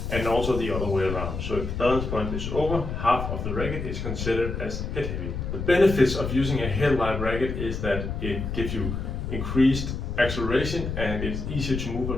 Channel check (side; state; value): left; noise; rumble, 4 dB below the sound